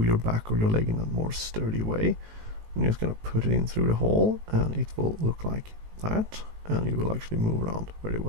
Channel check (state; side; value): late; left; 18 ms